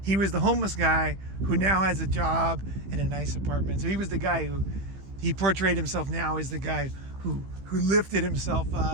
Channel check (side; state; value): left; late; 15 ms